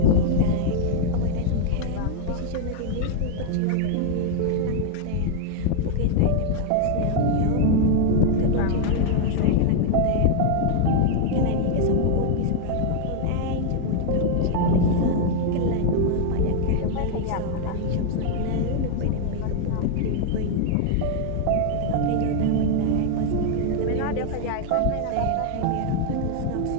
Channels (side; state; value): both; different; correlation 0.00